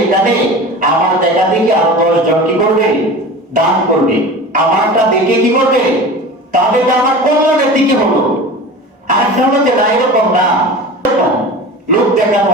এখানে আমার দেখা দেখে আরো 10 জন কি করবে? দান করবে, আমারটা দেখে কি করবে? তাহলে তো আমার কল্যাণের দিকে হলো। আর একটা হলো যে না, এরকম না, লোক দেখানো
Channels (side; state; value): both; normal; correlation 0.34